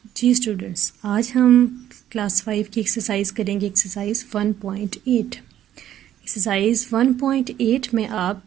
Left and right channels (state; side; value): quieter; left; 11.5 dB